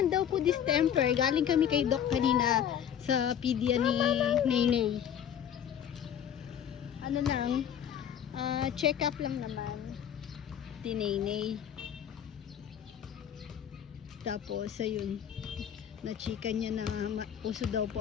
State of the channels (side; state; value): right; quieter; 9.2 dB